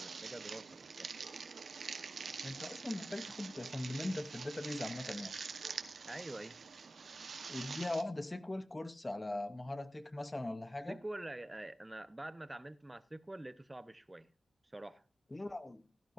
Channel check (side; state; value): both; normal; correlation 0.95